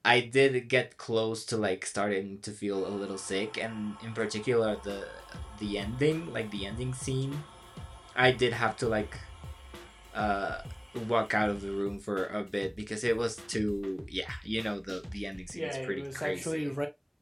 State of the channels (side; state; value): both; identical; correlation 1.00